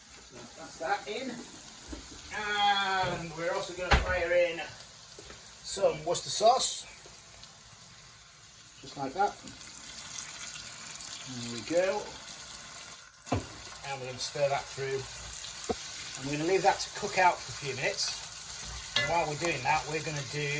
that's that in. And we're also going to fire in some Worcester sauce. Just like that. There we go. And we're going to stir that through. And we're going to leave that to cook out for a few minutes. And while we're doing that, we're going to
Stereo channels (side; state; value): both; identical; correlation 1.00